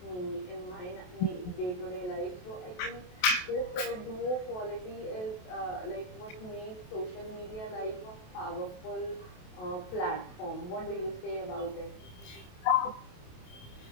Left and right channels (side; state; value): right; late; 28 ms